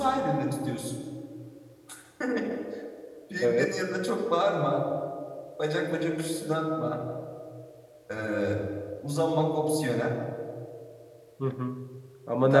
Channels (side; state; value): both; identical; correlation 1.00